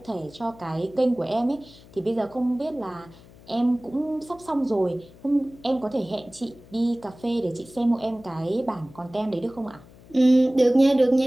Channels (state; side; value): noise; left; hum, 23 dB below the sound